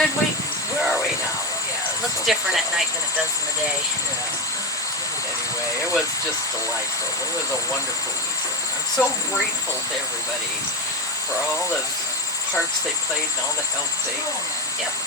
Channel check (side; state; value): both; normal; correlation 0.15